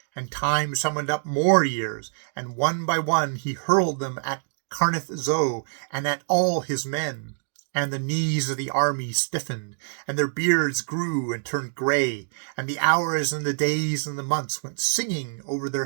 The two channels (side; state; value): left; silent; digital silence